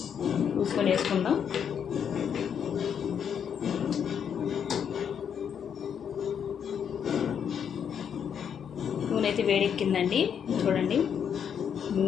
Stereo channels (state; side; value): quieter; right; 7.9 dB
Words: చూసుకొని వేసుకుందాం. నూనె అయితే వేడెక్కిందండి. చూడండి,